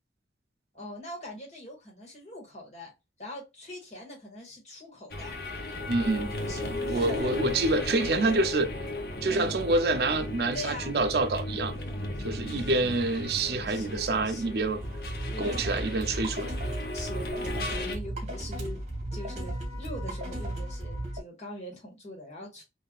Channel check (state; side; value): normal; both; correlation 0.29